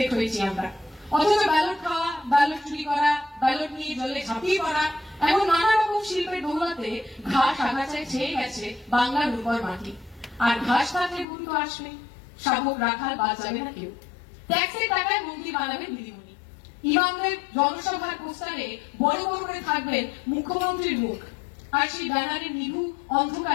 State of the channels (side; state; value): right; drops out; at 11.2 s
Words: হয়েছি আমরা। অথচ ব্যালট খাওয়া, ব্যালট চুরি করা, ব্যালট নিয়ে জলে ঝাঁপিয়ে পড়া, এমন নানা রকম শিল্পের দৌলতে ঘাস আগাছায় ছেয়ে গেছে বাংলার উপর মাটি। আর ঘাস থাকলে ভুল তো আসবে, শাবক রাখাল বাদ যাবে না কেউ। ট্যাক্সের টাকায় মন্ত্রী বানাবেন দিদিমণি, ইমামদের জনসভার পোস্টারে বড় বড় করে থাকবেন মুখ্যমন্ত্রীর মুখ, আর সেই ব্যানারের নিভু